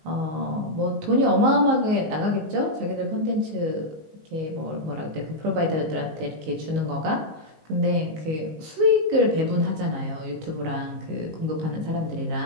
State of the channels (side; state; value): left; late; 19 ms